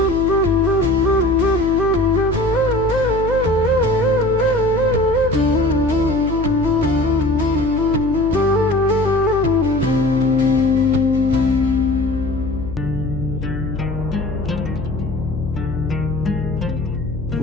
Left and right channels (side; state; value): left; noise; hum, 8 dB below the sound